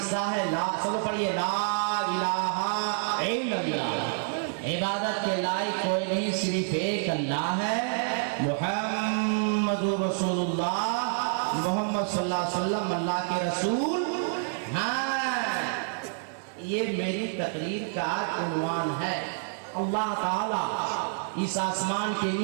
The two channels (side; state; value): left; silent; 59 dB below the other